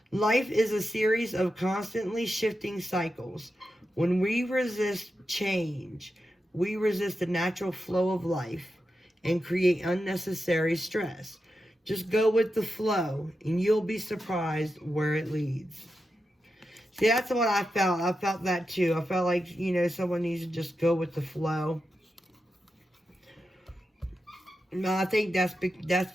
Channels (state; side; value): normal; both; correlation 0.89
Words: Life is a series of constantly shifting cycles. When we resist change, we resist the natural flow of life and create unnecessary stress. Just go with the flow, and you'll be surprised where it leads. See, that's what I felt. I felt that too. I felt like, someone needs to just go with the flow. No, I think that's